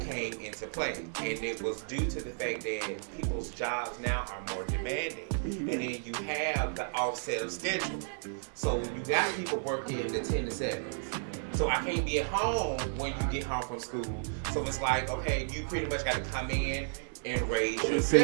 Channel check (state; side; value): silent; left; digital silence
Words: came into play, and it was due to the fact that people's jobs now are more demanding, and then you have the offset of schedule. So you got people working the 10 to 7s. So I can't be at home when you get home from school. So it's like, okay, you pretty much got to come in and raise yourself.